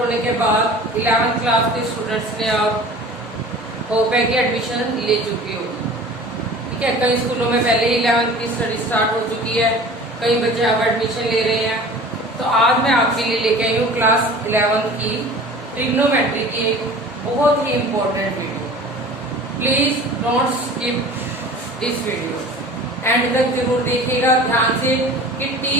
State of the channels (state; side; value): normal; both; correlation 0.42